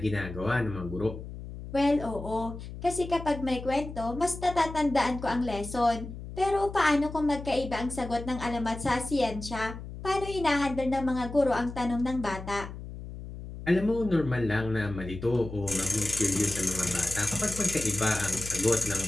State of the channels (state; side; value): noise; left; hum, 11 dB below the sound